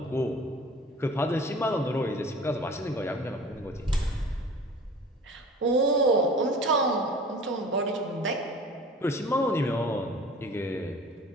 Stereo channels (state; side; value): normal; both; correlation 0.43